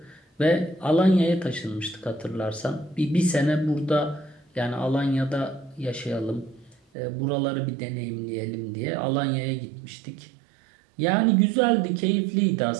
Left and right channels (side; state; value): left; drops out; at 6.8 s